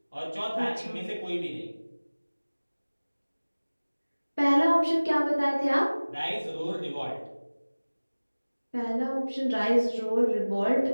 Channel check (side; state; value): both; inverted; correlation -1.00